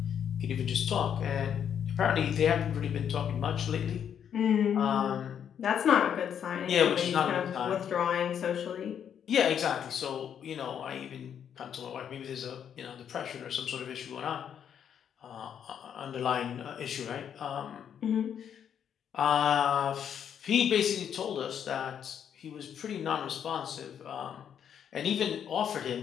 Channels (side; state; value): right; quieter; 8.6 dB